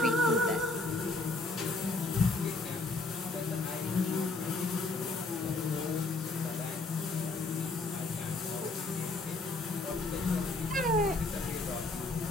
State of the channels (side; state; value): right; quieter; 3.2 dB